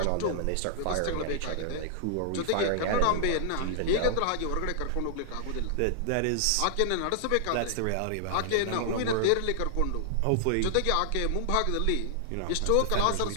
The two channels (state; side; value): different; both; correlation -0.01